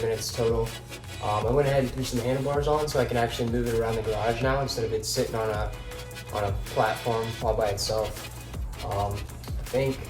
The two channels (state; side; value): identical; both; correlation 1.00